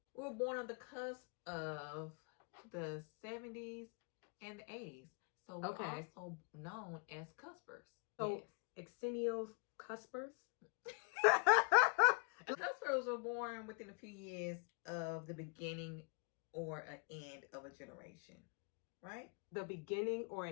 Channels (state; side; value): quieter; right; 36.4 dB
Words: We were born on the cusp of the 70s and the 80s. So we're also known as cuspers. So Exennials, cuspers? Cuspers were born within a few years of the beginning or an end of a generation, right? The beginning or